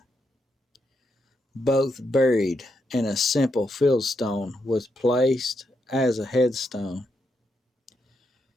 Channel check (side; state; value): both; normal; correlation 0.81